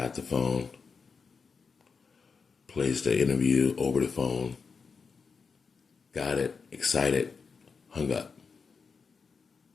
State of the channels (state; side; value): quieter; right; 5.3 dB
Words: the phone, placed the interview over the phone, got it, excited, hung up.